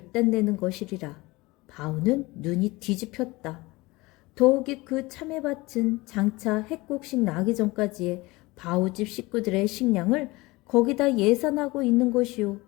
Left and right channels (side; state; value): right; quieter; 22.1 dB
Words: 것이리라. 바우는 눈이 뒤집혔다. 더욱이 그 참외밭은 장차 핵곡식 나기 전까지의 바우집 식구들의 식량을 거기다 예산하고 있는 것이요.